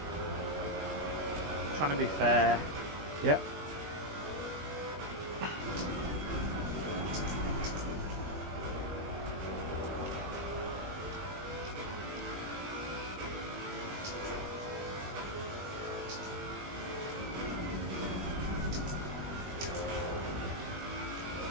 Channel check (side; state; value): left; late; 20 ms